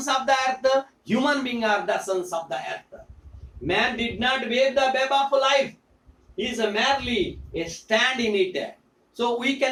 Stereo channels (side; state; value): both; identical; correlation 1.00